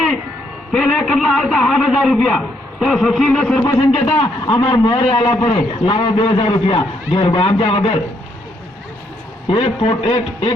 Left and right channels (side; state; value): both; normal; correlation 0.73